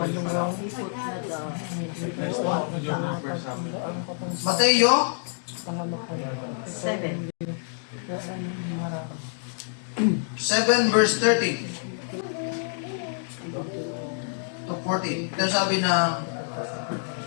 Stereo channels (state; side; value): silent; right; digital silence